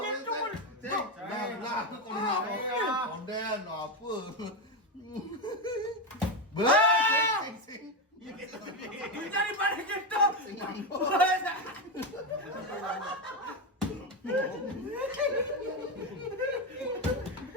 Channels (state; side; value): normal; both; correlation 0.12